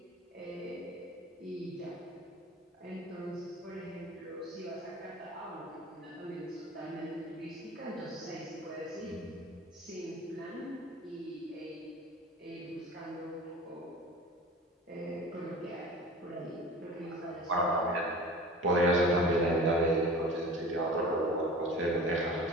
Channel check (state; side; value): normal; both; correlation 0.39